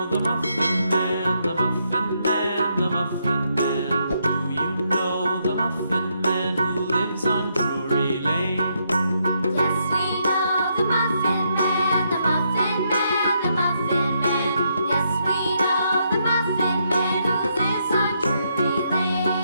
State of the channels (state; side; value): inverted; both; correlation -0.77